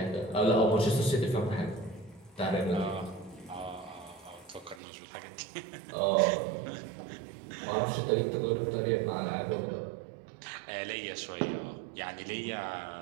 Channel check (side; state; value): left; drops out; at 4.8 s